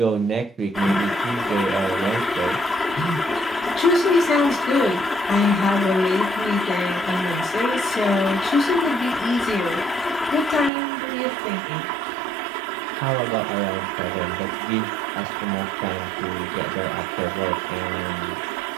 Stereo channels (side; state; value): left; drops out; at 10.7 s